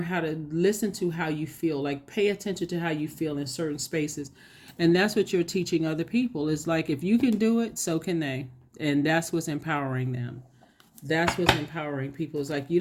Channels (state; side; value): identical; both; correlation 1.00